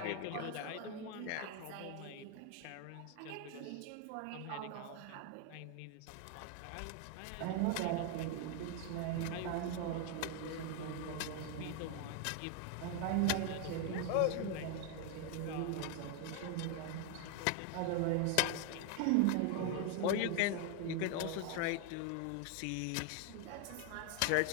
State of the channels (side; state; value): both; different; correlation 0.01